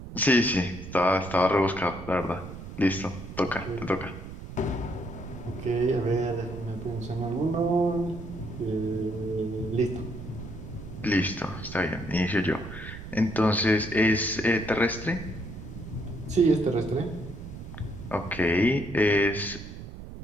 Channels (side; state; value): right; noise; rumble, 11 dB below the sound